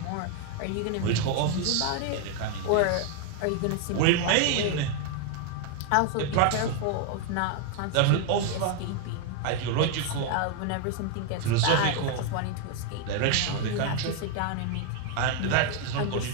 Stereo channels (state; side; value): different; both; correlation 0.01